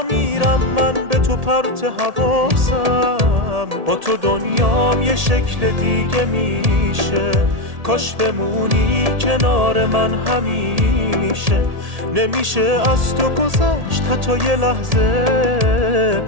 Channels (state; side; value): late; left; 1.8 ms